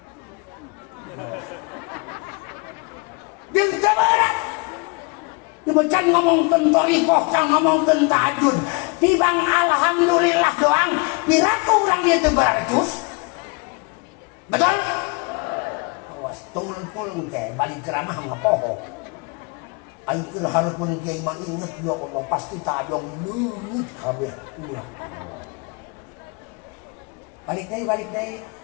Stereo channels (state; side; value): quieter; right; 30.1 dB